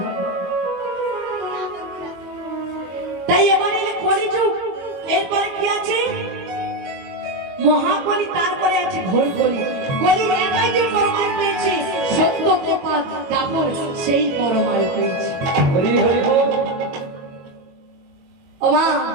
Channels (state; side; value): late; left; 22 ms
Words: তাই এবারে এলে কলিযুগ। এরপরে কি আছে? মহাকলি, তারপরে আছে ঘোর কলি। কলি একাই যে পরমায়ু পেয়েছে, সত্য কৃপা দাপর সেই পরমায়ু পেয়েছে। হরি হরি বল। ও মা,